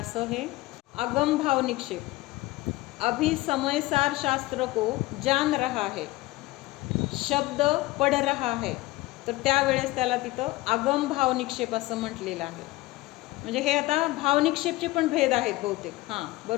हे आगम भाव निक्षेप. अभी समय सार शास्त्र को जान रहा है, शब्द पढ़ रहा है, तर त्यावेळेस त्याला तिथं आगम भाव निक्षेप असं म्हटलेलं आहे. म्हणजे हे आता भावनिक्षेपचे पण भेद आहेत बहुतेक. हां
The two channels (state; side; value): quieter; right; 19.2 dB